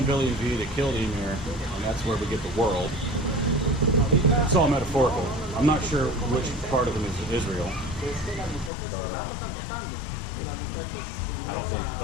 Vili and V, they killed Ymir, and that's where we get the world. It's all metaphorical. I'm not sure which part of them is Israel. But, I don't think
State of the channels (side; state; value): right; drops out; at 8.7 s